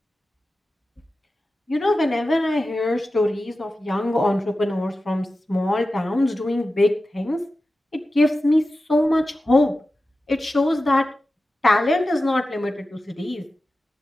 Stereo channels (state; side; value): normal; both; correlation 0.94